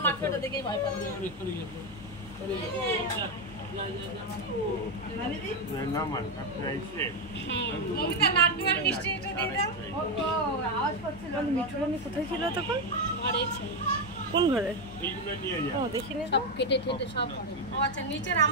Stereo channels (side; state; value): left; noise; hum, 17 dB below the sound